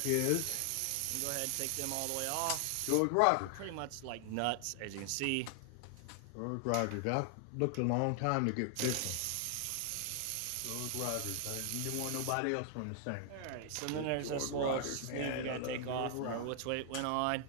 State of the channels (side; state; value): both; different; correlation 0.00